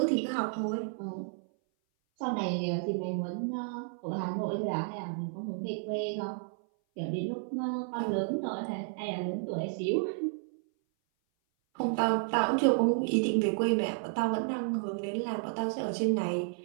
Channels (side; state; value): left; silent; 57 dB below the other